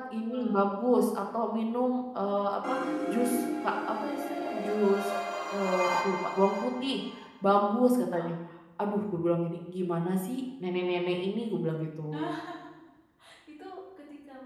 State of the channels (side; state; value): both; identical; correlation 1.00